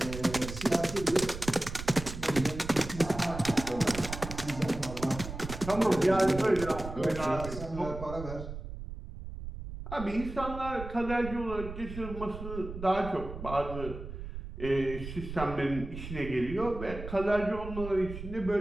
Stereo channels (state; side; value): noise; right; rumble, 9 dB below the sound